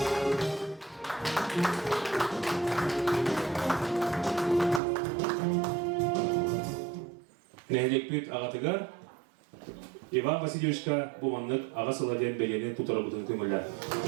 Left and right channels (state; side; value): drops out; left; at 4.8 s